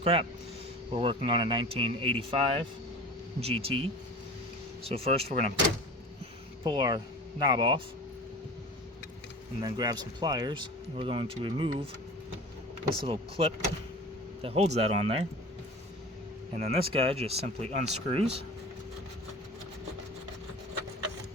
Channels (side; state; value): both; normal; correlation 0.37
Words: We're working on a 1985 GT. So first we're going to pull our knob off and then grab some pliers. We're going to remove this little clip that holds that on there. And then this guy just simply unscrews.